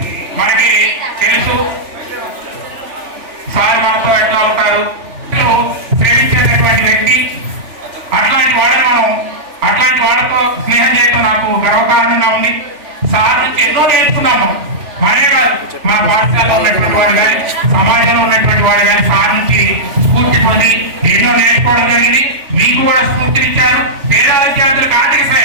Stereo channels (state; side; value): late; left; 3.5 ms